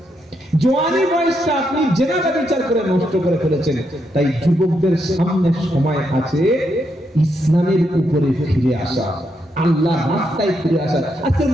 জওয়ানি বয়সটা আপনি জেনাবা বিচার করে নষ্ট করে ফেলেছেন। তাই যুবকদের সামনে সময় আছে ইসলামের উপরে ফিরে আসা, আল্লাহ রাস্তায় ফিরে আসা। আজকে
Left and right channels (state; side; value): normal; both; correlation 0.80